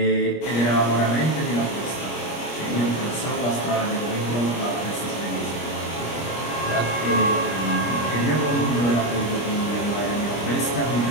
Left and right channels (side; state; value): right; late; 25 ms